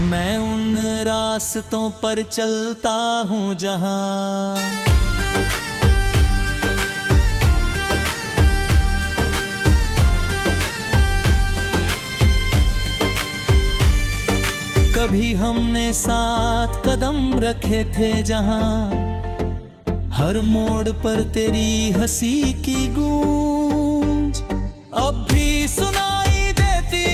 मैं उन रास्तों पर चलता हूँ जहाँ कभी हमने साथ कदम रखे थे, जहाँ हर मोड़ पर तेरी हंसी की गूंज अब भी सुनाई देती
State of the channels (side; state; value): both; identical; correlation 1.00